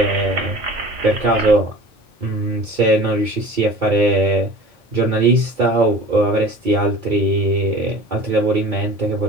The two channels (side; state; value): both; normal; correlation 0.41